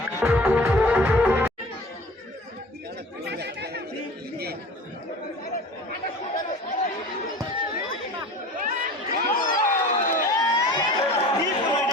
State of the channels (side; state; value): both; normal; correlation 0.40